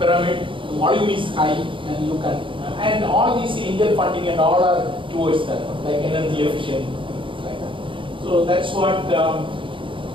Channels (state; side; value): late; left; 0.25 ms